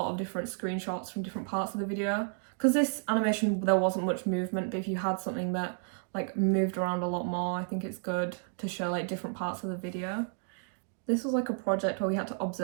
of different screenshots from different parts of the video, because this animation there wasn't much movement, but if you had something that like moved around a lot more, I think it's good to show like different parts of the video. This was like a project where we had to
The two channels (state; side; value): silent; left; 57 dB below the other